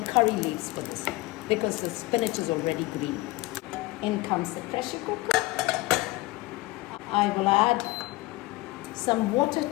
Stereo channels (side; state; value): right; quieter; 21.0 dB